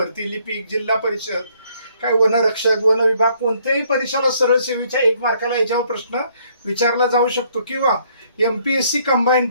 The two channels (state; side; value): inverted; both; correlation -0.66